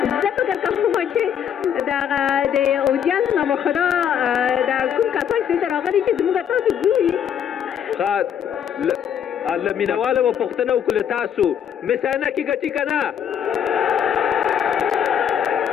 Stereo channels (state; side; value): quieter; right; 8.8 dB